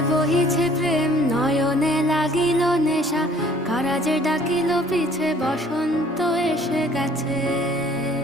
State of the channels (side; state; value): both; normal; correlation 0.56